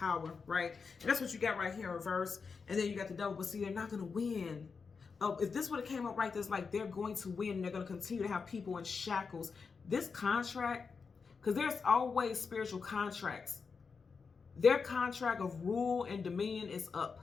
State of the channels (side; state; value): right; quieter; 5.2 dB